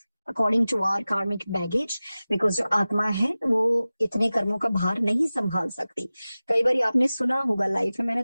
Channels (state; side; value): inverted; both; correlation -0.97